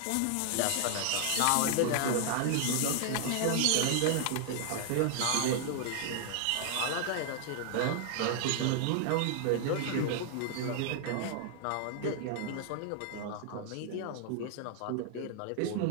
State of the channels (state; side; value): different; both; correlation 0.00